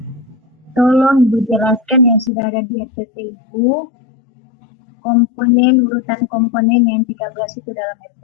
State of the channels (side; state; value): right; drops out; at 2.3 s